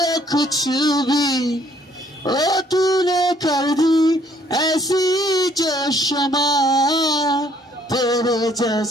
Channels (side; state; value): both; normal; correlation 0.63